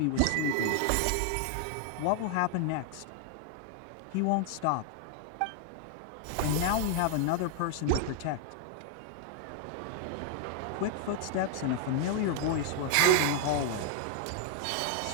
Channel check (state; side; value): different; both; correlation 0.00